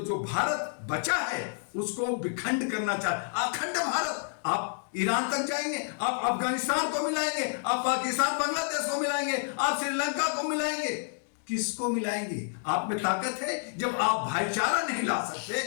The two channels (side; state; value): right; silent; digital silence